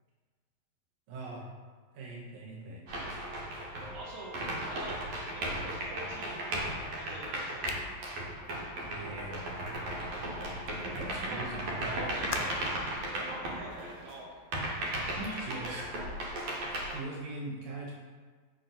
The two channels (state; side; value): late; left; 11 ms